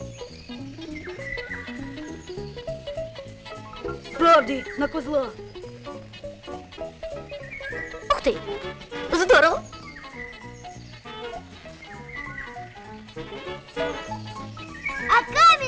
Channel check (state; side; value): identical; both; correlation 1.00